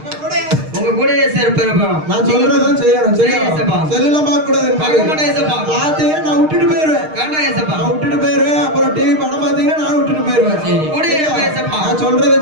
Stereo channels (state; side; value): late; left; 6.5 ms